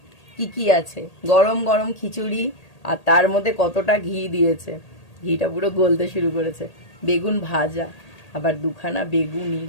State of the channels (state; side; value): late; right; 1.8 ms